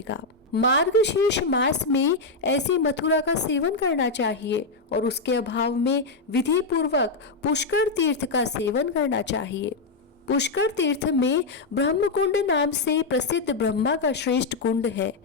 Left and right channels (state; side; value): quieter; right; 3.7 dB